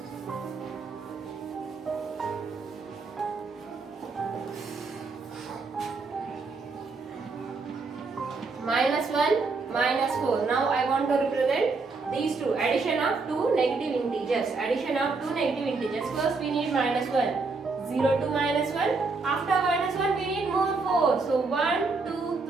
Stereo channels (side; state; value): left; quieter; 4.1 dB